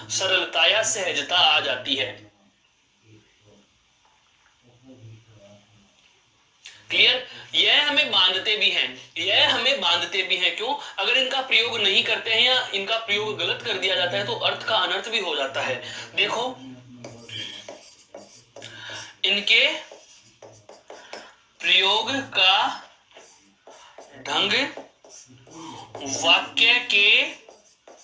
सरलता या सहजता आ जाती है। क्लियर? यह हमें बांधते भी हैं, यह हमें बांधते भी हैं। क्यों? अगर इनका प्रयोग नहीं करते हैं या इनका प्रयोग गलत कर दिया जाता है तो अर्थ का अनर्थ भी हो जाता है। देखो, इनके प्रयोग का ढंग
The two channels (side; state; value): both; identical; correlation 1.00